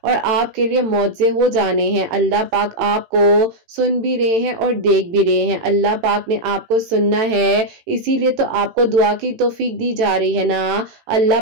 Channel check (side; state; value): left; late; 18 ms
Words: और आपके लिए मौजे हो जाने हैं। अल्लाह पाक आपको सुन भी रहे हैं और देख भी रहे हैं। अल्लाह पाक ने आपको सुनना है, इसीलिए तो आपको दुआ की तौफीक दी जा रही है ना। अल्लाह